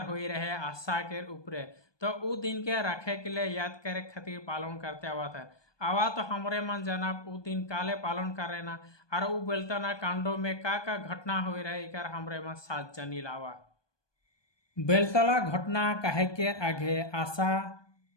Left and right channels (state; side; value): late; right; 1.2 ms